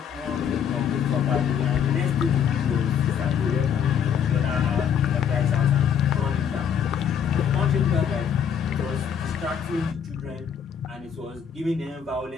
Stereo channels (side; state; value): right; quieter; 7.9 dB